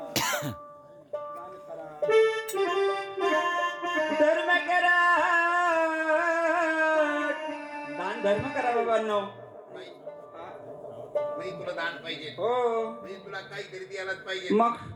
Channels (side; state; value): both; identical; correlation 1.00